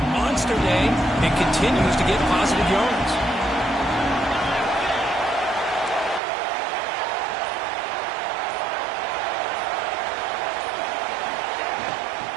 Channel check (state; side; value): drops out; left; at 6.2 s